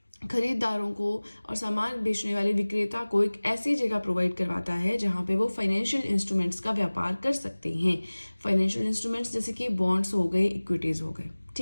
खरीदारों को और सामान बेचने वाले विक्रेता को एक ऐसी जगह प्रोवाइड करवाता है जहां पे वो फाइनेंशियल इंस्ट्रूमेंट्स का व्यापार कर सकते हैं। फाइनेंशियल इंस्ट्रूमेंट्स जैसे कि बॉन्ड्स हो गए, इक्विटीज हो गए।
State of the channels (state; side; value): inverted; both; correlation -1.00